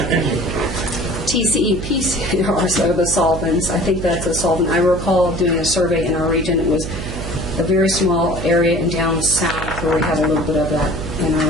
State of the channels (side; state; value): right; noise; hum, 7 dB below the sound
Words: TCEP are so the solvents. I think that's a solvent. I recall doing a survey in our region. It was a very small area in down south where we have a little bit of that in our